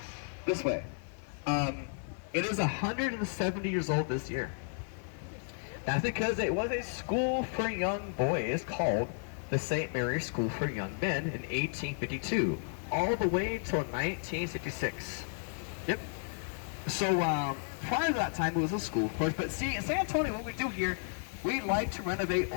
this way. It is 170 years old this year. That's because it was a school for young boys called the St. Mary's School for Young Men in 1852, all the way till 1966. Yep. So prior to that time, it was a school, of course. But see, in San Antonio, what we do here, we like to renovate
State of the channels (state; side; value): silent; right; digital silence